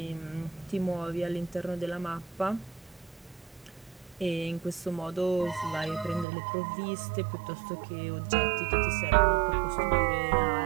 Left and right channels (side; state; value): left; drops out; at 6.2 s